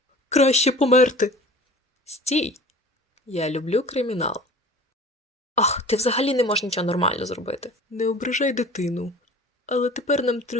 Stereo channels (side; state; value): both; normal; correlation 0.42